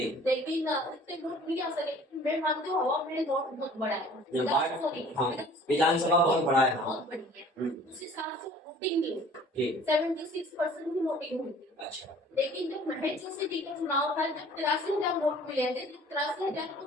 लेकिन इतने वोट नहीं आ सके। मैं मानती हूँ हवा में वोट बहुत बड़ा है। ये हाँ, विधानसभा बहुत बड़ा है। हाँ। बहुत बड़ी है। उस हिसाब से वोटिंग नहीं जी। 76% की वोटिंग हुई थी। अच्छा। लेकिन जब महेश सिटी का चुनाव था जब 83,000 वोट मिले थे, जब 83,000 को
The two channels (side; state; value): both; normal; correlation 0.50